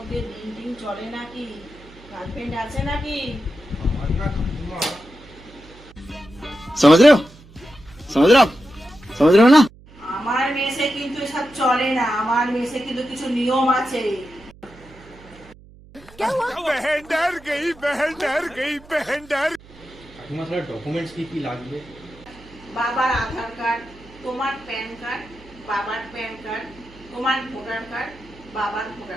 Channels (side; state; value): right; noise; hum, 22 dB below the sound